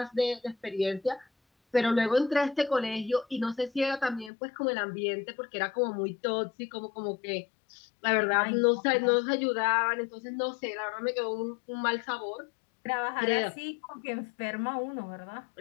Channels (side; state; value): right; drops out; at 4.3 s